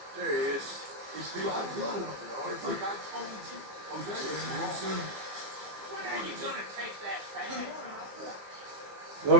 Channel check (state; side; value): late; left; 15 ms